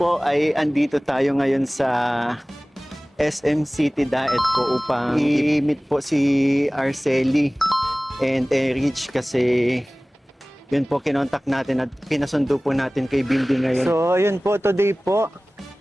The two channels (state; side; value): normal; both; correlation 0.98